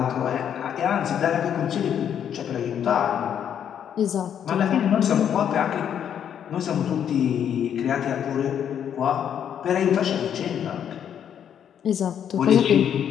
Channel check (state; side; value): quieter; right; 9.0 dB